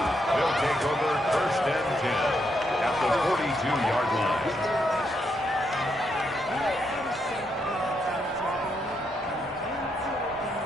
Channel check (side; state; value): both; normal; correlation 0.79